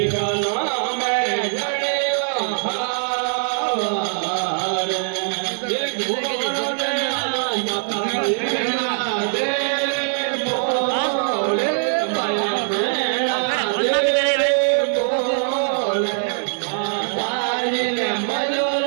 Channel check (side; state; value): left; silent; digital silence